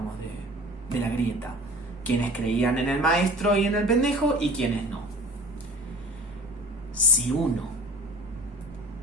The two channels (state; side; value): normal; both; correlation 0.42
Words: de la grieta. Quienes creían en el maestro y en el pendejo y quienes no. Si uno